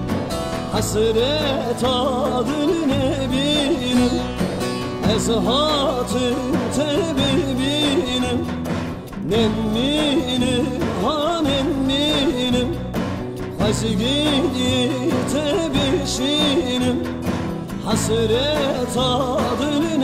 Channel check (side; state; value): both; identical; correlation 1.00